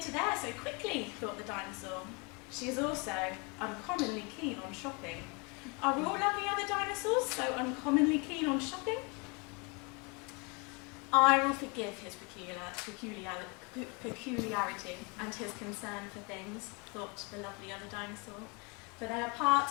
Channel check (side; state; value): right; quieter; 30.8 dB